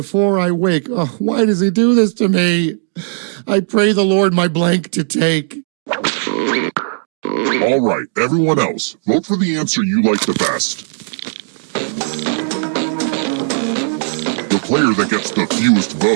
I wake, oh, why does he do this to me? I pray the Lord my blank to take. All right, everyone else, vote for the answer you like the best. The player that gets the fewest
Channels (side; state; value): left; silent; digital silence